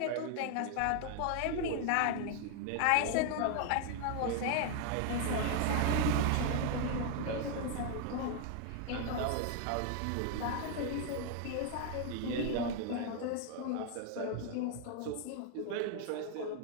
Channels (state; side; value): different; both; correlation 0.00